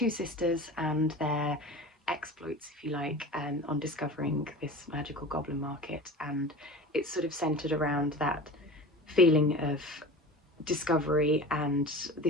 sisters and their exploits, if you like, on discovering this magical goblin market, and it's sort of centered around that feeling of discovery and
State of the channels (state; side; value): normal; both; correlation 0.35